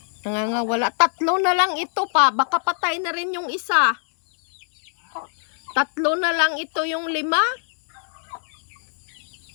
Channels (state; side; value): silent; right; digital silence